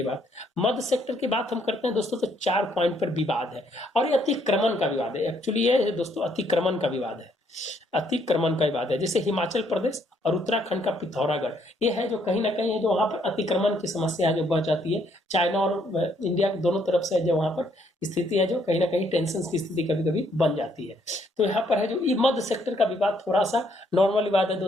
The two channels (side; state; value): both; normal; correlation 0.69